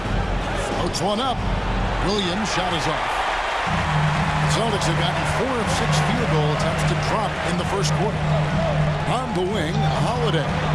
Floats one up. Williams' shot is off. Celtics have gotten 4 of 6 field goal attempts to drop in the first quarter. On the wing, Holiday.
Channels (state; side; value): identical; both; correlation 1.00